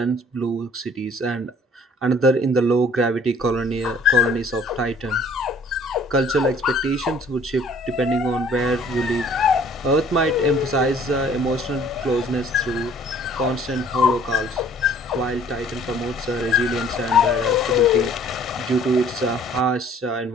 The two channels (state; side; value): normal; both; correlation 0.54